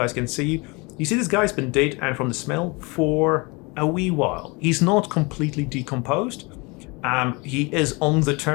can see you. You see this guy's been dead, and from the smell, for a wee while. He's not completely decomposed. He is on the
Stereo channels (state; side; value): quieter; right; 27.8 dB